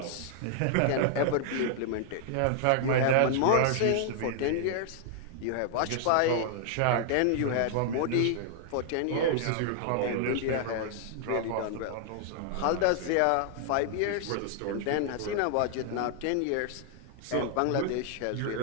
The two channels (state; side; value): different; both; correlation 0.00